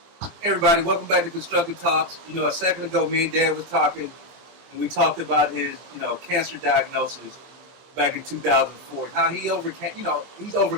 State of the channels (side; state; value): left; late; 23 ms